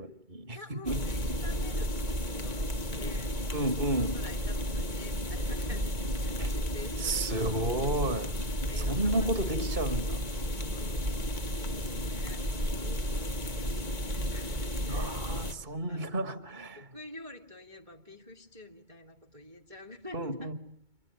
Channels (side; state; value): left; late; 2.2 ms